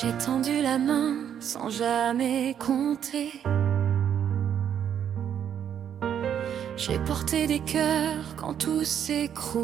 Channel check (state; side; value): quieter; left; 9.0 dB